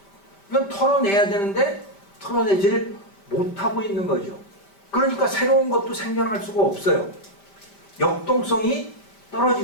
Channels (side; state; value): right; late; 5.1 ms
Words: 이건 털어내야 되는데 털어내지를 못하고 있는 거죠. 그러니까 새로운 것도 생겨날 수가 없어요. 역동성이